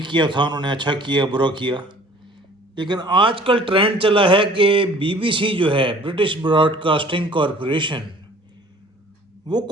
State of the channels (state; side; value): normal; both; correlation 0.51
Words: تھا انہوں نے اچھا کیا برا کیا، لیکن آج کل ٹرینڈ چلا ہے کہ بی بی سی جو ہے، برٹش براڈ کاسٹنگ کارپوریشن، وہ